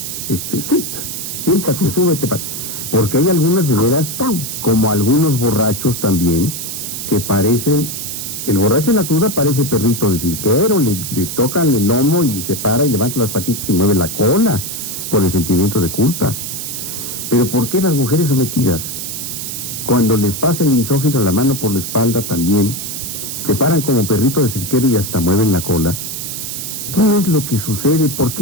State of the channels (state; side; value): noise; right; hiss, 6 dB below the sound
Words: Siéntate, súbete, porque hay algunas de veras, como algunos borrachos también, que parecen El borracho en la cruda parece perrito de cirquero, le tocan el lomo y se para y levanta las patitas y mueve la cola por el sentimiento de culpa. Pero ¿por qué las mujeres sometidas, cuando les pasa el misógino la mano por la espalda también, se paran como perrito de cirquero y hasta mueven la cola? ¿Qué es lo que sucede? ¿Por